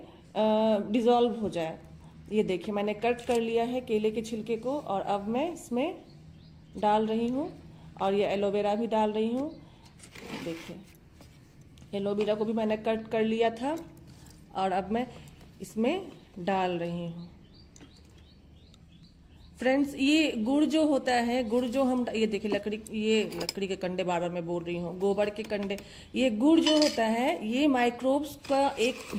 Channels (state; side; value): identical; both; correlation 1.00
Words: डिज़ोल्व हो जाए। ये देखिए मैंने कट कर लिया है केले के छिलके को और अब मैं इसमें डाल रही हूँ और ये एलोवेरा भी डाल रही हूँ। देखिए एलोवेरा को भी मैंने कट कर लिया था और अब मैं इसमें डाल रही हूँ। फ्रेंड्स ये गुड़ जो होता है, गुड़ जो हम ये देखिए लकड़ी के कंडे, बार बार मैं बोल रही हूँ, गोबर के कंडे, ये गुड़ जो होता है ये माइक्रोब्स का एक